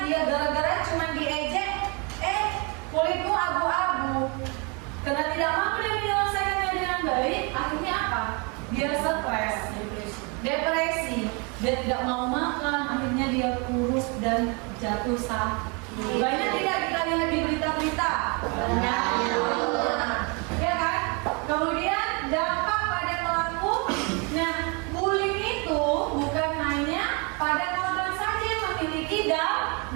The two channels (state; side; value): quieter; left; 32.0 dB